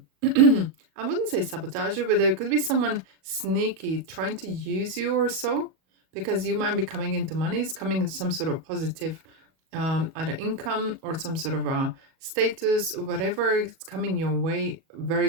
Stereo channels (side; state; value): left; late; 37 ms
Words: wouldn't say sabotager, but there could be someone sneaky trying to use you or so, because you might be coming into money. It's coming in some sort of positive, either income or some sort of a status, whatever is coming your way.